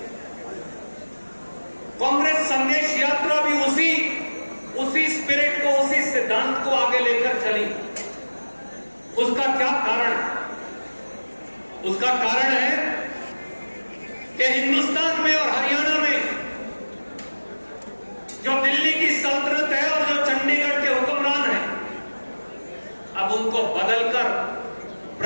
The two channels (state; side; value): inverted; both; correlation -1.00